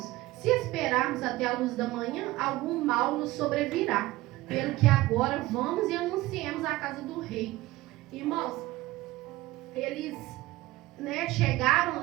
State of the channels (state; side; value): quieter; left; 18.1 dB